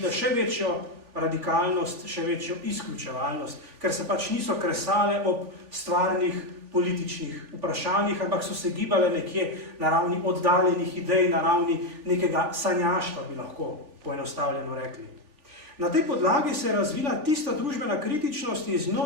še večjo radikalnost, še večjo izključevalnost, ker se pač niso kresale ob stvarnih političnih vprašanjih, ampak so se gibale nekje na ravni oddaljenih idej, na ravni nekega sanjaštva, bi lahko poenostavljeno rekli. Na tej podlagi se je razvila tista družbena kritičnost in z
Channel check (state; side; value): late; left; 3.4 ms